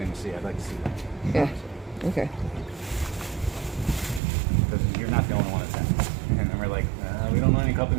to see. I'd like to see that. Yeah. Okay. Because you're not the only one that's happening. And then we're like, we don't know any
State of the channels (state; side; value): drops out; left; at 4.2 s